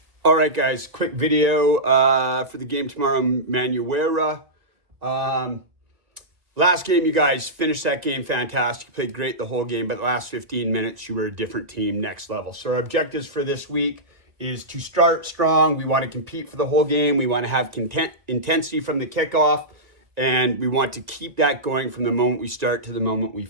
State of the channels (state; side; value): late; left; 1.9 ms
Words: All right, guys, quick video for the game tomorrow, Manurewa. Last game, you guys finished that game fantastic. You played great the whole game, but the last 15 minutes, you were a different team, next level. So our objectives for this week is to start strong. We want to compete for the whole game. We want to have intensity from the kickoff, and we want to keep that going from the moment we start to the moment we